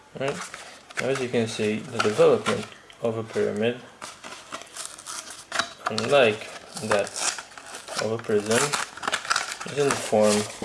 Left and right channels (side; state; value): both; identical; correlation 1.00